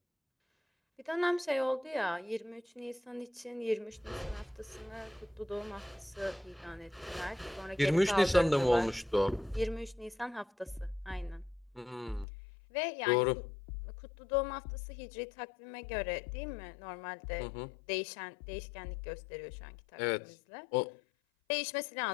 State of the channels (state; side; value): drops out; right; at 12.2 s